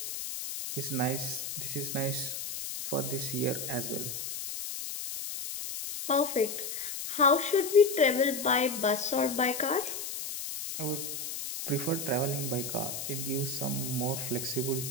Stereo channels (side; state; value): left; noise; hiss, 6 dB below the sound